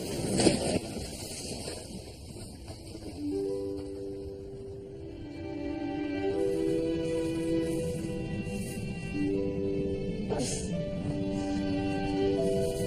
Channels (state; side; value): identical; both; correlation 1.00